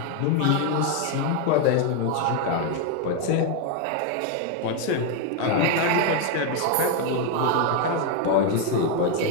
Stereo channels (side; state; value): both; different; correlation 0.01